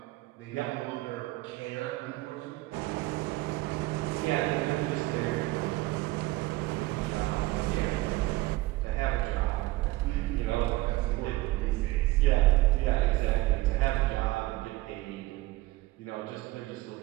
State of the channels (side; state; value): left; quieter; 19.4 dB